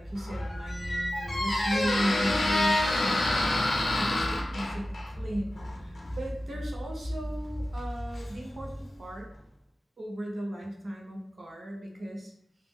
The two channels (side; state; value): both; normal; correlation 0.94